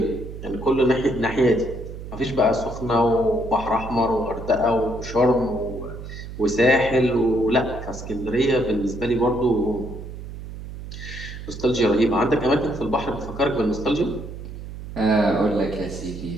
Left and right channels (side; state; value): right; noise; hum, 11 dB below the sound